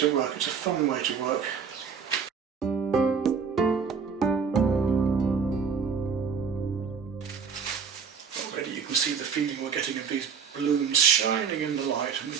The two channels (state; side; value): quieter; left; 6.2 dB